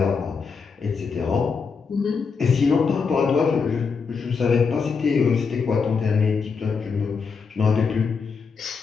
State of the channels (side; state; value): right; quieter; 5.3 dB